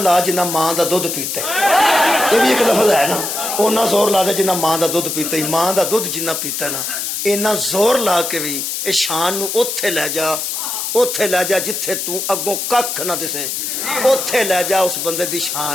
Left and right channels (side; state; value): left; noise; hiss, 3 dB below the sound